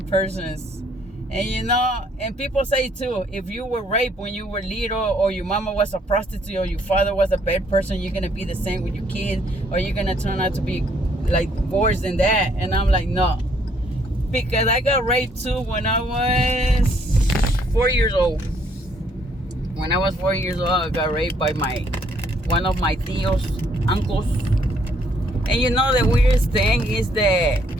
persons. And and people say too, if you were raped when you were little, or your mama was a prostitute, or your father was a bad person, you're going to be the same with your kids, or you're going to turn out to be like worse than that. And I'm like, no. Because I got raped too when I was 4 years old. When I was 4 years old, I got raped by one of my tios, uncles. And the weirdest thing is that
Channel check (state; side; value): normal; both; correlation 0.67